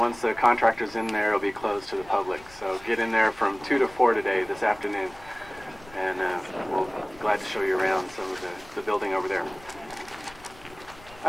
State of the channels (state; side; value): noise; left; rumble, 22 dB below the sound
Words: the contractor's in there, it'll be closed to the public. So get in there from 2 to 4 today, this afternoon, and we'll be glad to show you around some of the building over there.